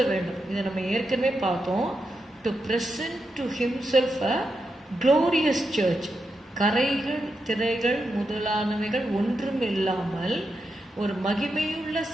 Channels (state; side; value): normal; both; correlation 0.86